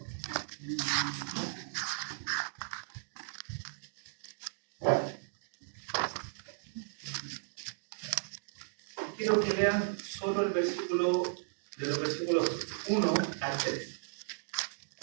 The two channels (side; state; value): left; silent; digital silence